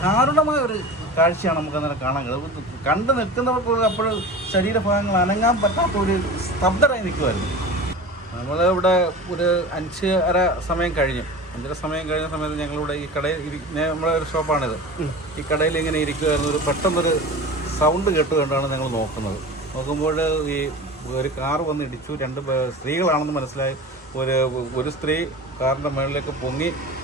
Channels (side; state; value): both; normal; correlation 0.34